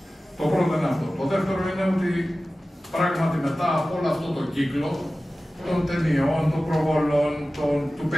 Το πρώτο είναι αυτό. Το δεύτερο είναι ότι πράγματι μετά από όλο αυτό το κύκλο των ταινιών, των προβολών, του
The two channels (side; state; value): both; normal; correlation 0.96